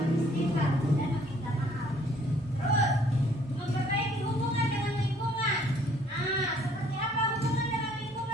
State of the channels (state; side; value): normal; both; correlation 0.61